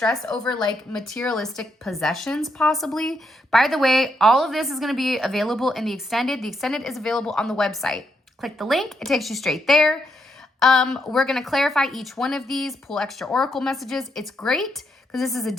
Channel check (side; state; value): both; normal; correlation 0.78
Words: over like materialistic possessions possibly. By the way, all of this is going to be available in the extended. The extended is available on the website. Click the link. It takes you straight there. We're going to clarify each one of these, pull extra oracle messages. It's great because this is a